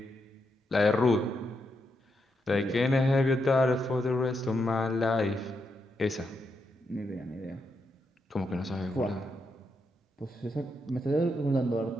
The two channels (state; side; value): normal; both; correlation 0.82